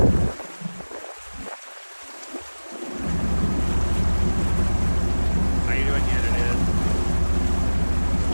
How you doing, yet it is?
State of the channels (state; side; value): inverted; both; correlation -1.00